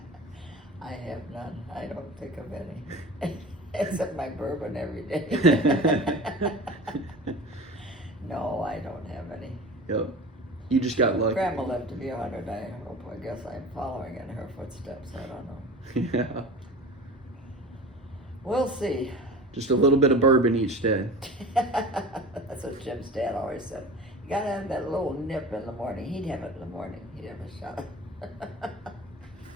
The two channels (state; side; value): normal; both; correlation 0.36